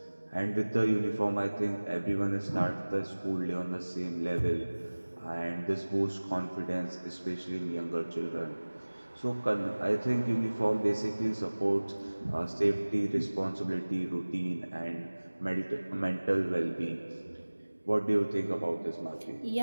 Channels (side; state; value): both; inverted; correlation -1.00